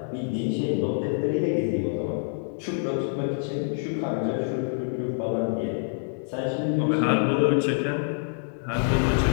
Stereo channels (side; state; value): right; silent; digital silence